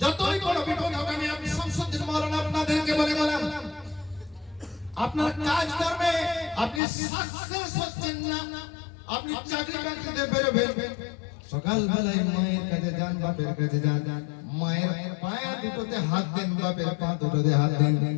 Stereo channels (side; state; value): right; drops out; at 6.8 s